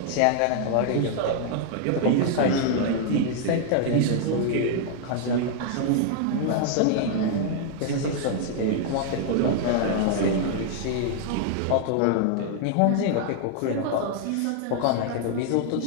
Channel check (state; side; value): different; both; correlation 0.00